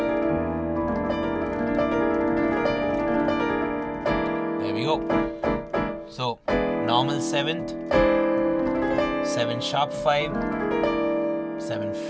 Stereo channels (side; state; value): both; identical; correlation 1.00